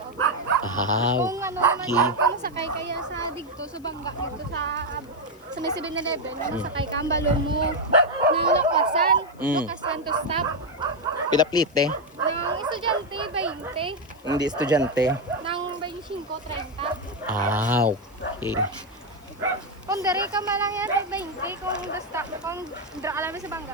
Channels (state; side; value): noise; left; hiss, 29 dB below the sound